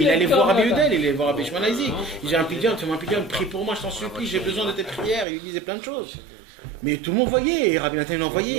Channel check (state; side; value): drops out; left; at 5.2 s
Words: allait voir Rabbi Udel, il allait voir Rabbi Shimon Isaac. Il disait un pidyon, prie pour moi, je t'en supplie, j'ai besoin de tes prières. Il disait plein de choses. Mais tout le monde voyait, et Rabbi Nathan il